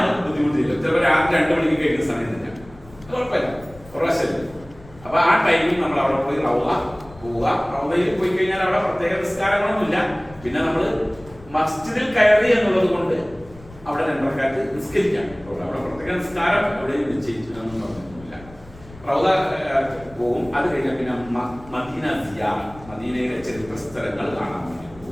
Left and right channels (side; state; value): left; noise; rumble, 21 dB below the sound